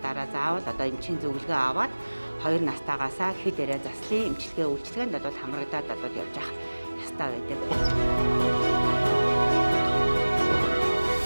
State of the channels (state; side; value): inverted; both; correlation -1.00